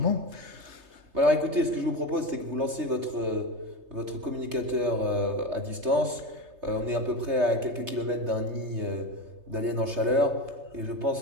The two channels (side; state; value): left; late; 3.3 ms